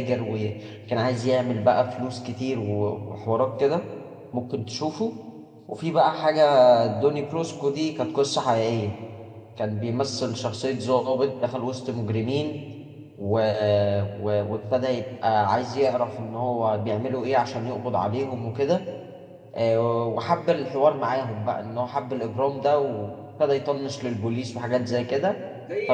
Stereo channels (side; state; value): both; identical; correlation 1.00